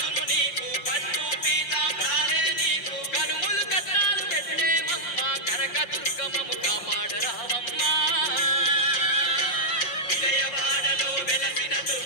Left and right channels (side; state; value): right; late; 5.7 ms